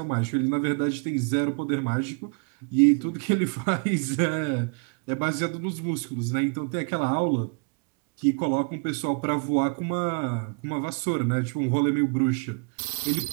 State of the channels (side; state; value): left; quieter; 35.9 dB